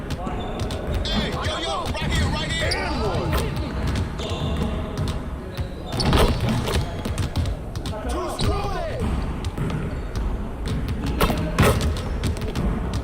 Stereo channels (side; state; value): both; identical; correlation 1.00